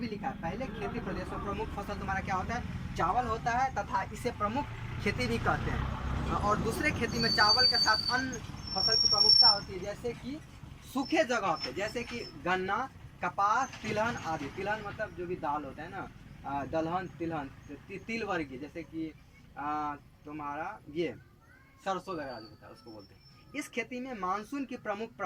लिखा है, पहले खेती प्रदेश में प्रमुख फसल तुम्हारा क्या होता है, चावल होता है, तथा इसे प्रमुख खेती भी कहते हैं। और दूसरे खेती में चावल के साथ अन्य फसल की प्रमुखता होती है, जैसे कि सूखे जगह पे, जैसे कि गन्ना, कपास, तिलहन आदि। तिलहन मतलब जो भी दाल होता है ना, दलहन, तिलहन, तिल वर्गीय, जैसे कि तुम्हारा ये सरसों वगैरह जो होता है उसको बोलते हैं। इस खेती में मानसून की प्रमुख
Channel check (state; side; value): identical; both; correlation 1.00